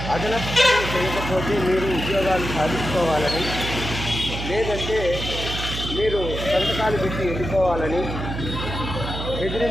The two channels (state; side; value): noise; right; hum, 6 dB below the sound